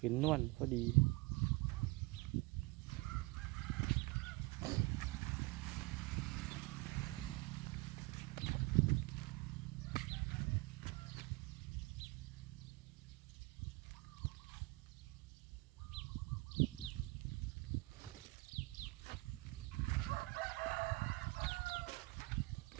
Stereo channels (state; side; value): quieter; left; 23.6 dB